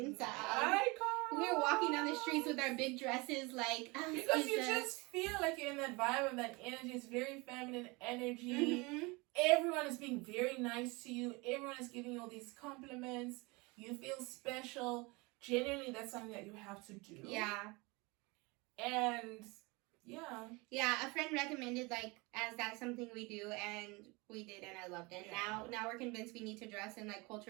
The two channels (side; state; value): left; quieter; 25.9 dB